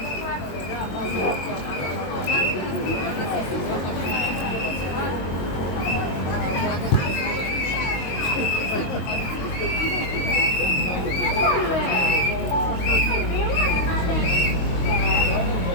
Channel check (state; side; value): late; right; 22 ms